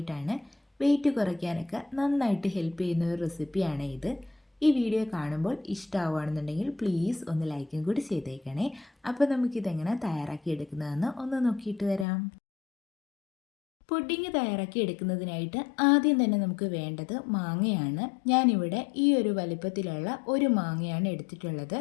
വെയിറ്റ് കുറയ്ക്കാനൊക്കെ നന്നായിട്ട് ഹെൽപ്പ് ചെയ്യുന്ന ഒരു റെസിപ്പിയാണ് ഇത്. ഈ വീഡിയോ കാണുമ്പോൾ ഇഷ്ടമാവുകയാണെന്നുണ്ടെങ്കിൽ പ്ലീസ് ഒന്ന് ലൈക്കും കൂടി ചെയ്തേക്കണേ. അപ്പോൾ നമുക്കിതെങ്ങനെ തയ്യാറാക്കി എടുക്കുന്നതെന്ന് ഒന്ന് നോക്കിയിട്ട് വരാം. പുഡിങ് തയ്യാറാക്കി എടുക്കുന്നതിനായിട്ട് ആദ്യം തന്നെ നമുക്ക് വേണ്ടത് മാങ്ങയാണ്. ഞാനിവിടെ ഈ ഒരു വലിപ്പത്തിലുള്ള ഒരു മാങ്ങയാണ് എടുത്തിട്ടുള്ളത്.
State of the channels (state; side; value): drops out; right; at 12.1 s